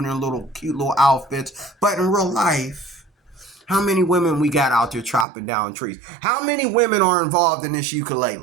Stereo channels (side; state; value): left; drops out; at 5.2 s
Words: their little cute little outfits. But in real life, how many women we got out there chopping down trees? How many women are involved in this